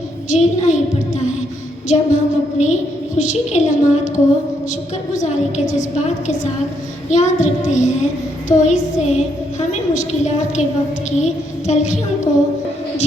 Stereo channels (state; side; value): normal; both; correlation 0.75